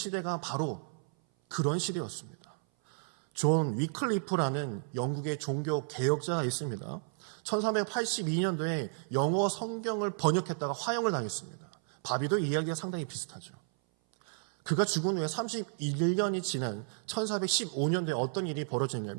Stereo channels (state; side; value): silent; left; 56 dB below the other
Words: 바로 그런 시대였습니다. 존 위클리프라는 영국의 종교 개혁자가 있습니다. 1382년도에 영어 성경을 번역했다가 화형을 당했습니다. 바비도 이야기가 상당히 비슷하죠. 그가 죽은 후에 31년이 지난 1415년도에 어떤 일이